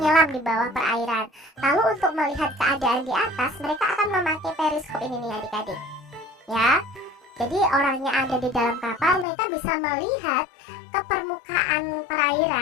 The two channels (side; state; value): right; drops out; at 9.2 s